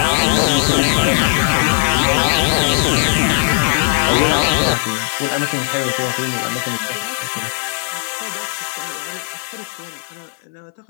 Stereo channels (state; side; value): silent; right; 61 dB below the other